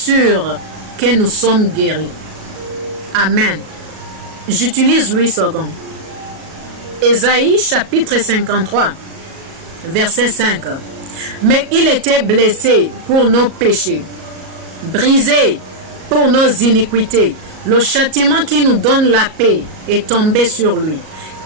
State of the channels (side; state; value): left; late; 37 ms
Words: que nous sommes guéris. Amen. J'utilise Louis II. Ésaïe chapitre 53, verset 5. Mais il était blessé pour nos péchés, brisé pour nos iniquités. Le châtiment qui nous donne la paix est tombé sur lui.